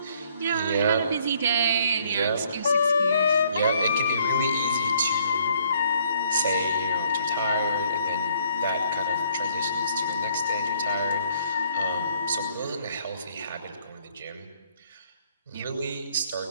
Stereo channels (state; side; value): inverted; both; correlation -0.64